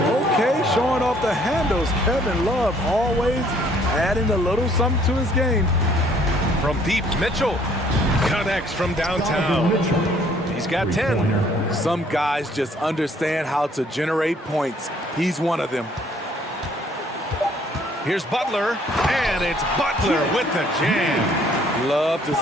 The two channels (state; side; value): normal; both; correlation 0.61